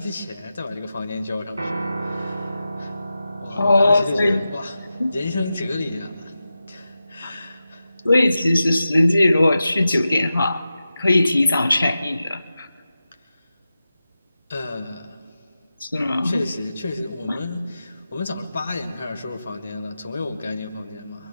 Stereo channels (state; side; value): inverted; both; correlation -0.92